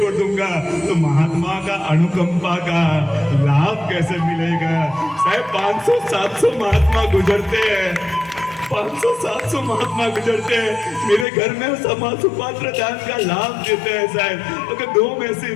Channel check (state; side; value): drops out; right; at 11.2 s